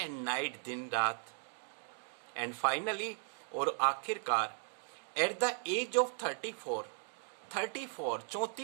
नाइट, दिन रात। एंड फाइनली, और आखिरकार, एट द एज ऑफ 34,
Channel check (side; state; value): left; silent; 53 dB below the other